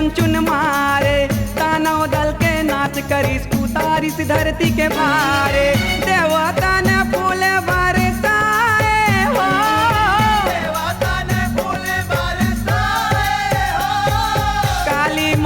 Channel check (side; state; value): both; identical; correlation 1.00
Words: चुन मारे, दानव दल के नाश करिस उतारिस धरती के भारे। देवता ने फूल बरसाए हो, देवता ने फूल बरसाए हो। काली